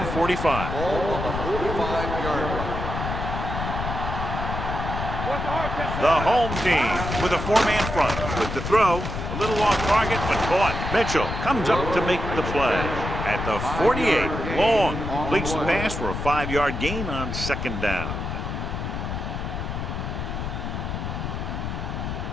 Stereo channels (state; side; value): noise; left; rumble, 4 dB below the sound